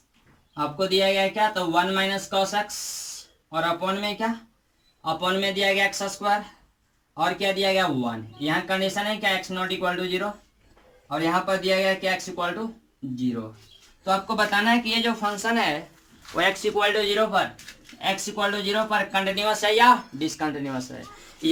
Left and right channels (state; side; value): identical; both; correlation 1.00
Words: आपको दिया गया क्या तो वन माइनस कॉस एक्स और अपॉन में क्या, अपॉन में दिया गया एक्स स्क्वायर और क्या दिया गया 1। यहाँ कंडीशन है क्या एक्स नॉट इक्वल टू 0 और यहाँ पर दिया गया क्या एक्स इक्वल टू 0। तो आपको बताना है कि ये जो फंक्शन है वो एक्स इक्वल टू 0 पर कंटिन्यूअस है या डिसकंटिन्यूअस है।